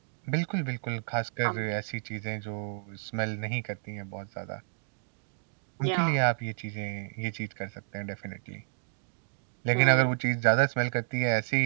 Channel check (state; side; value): silent; left; digital silence